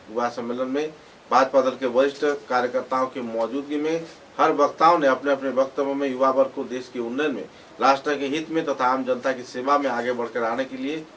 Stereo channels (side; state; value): both; identical; correlation 1.00